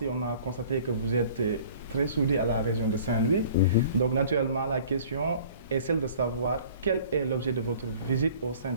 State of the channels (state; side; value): inverted; both; correlation -0.49